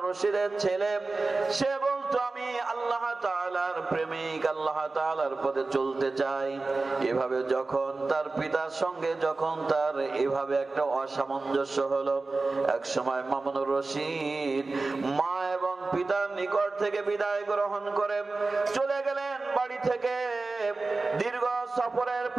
রশিদের ছেলে, সে বলতো, আমি আল্লাহ তাআলার প্রেমিক, আল্লাহ তাআলার পথে চলতে চাই। এভাবে যখন তার পিতার সঙ্গে যখন তার এভাবে একটা অসামঞ্জস্য হলো, এক সময় মামুনুর রশিদ মা এবং পিতার নিকট থেকে বিদায় গ্রহণ করে চলে গেলেন বাড়ি থেকে। দীর্ঘ সফরের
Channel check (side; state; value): left; quieter; 3.6 dB